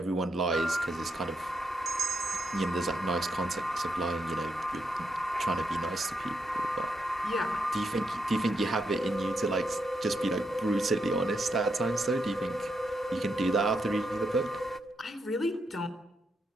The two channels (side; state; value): both; normal; correlation 0.81